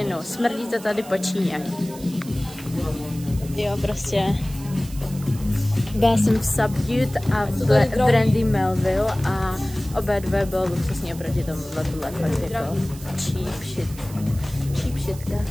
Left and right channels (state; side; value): noise; right; hiss, 18 dB below the sound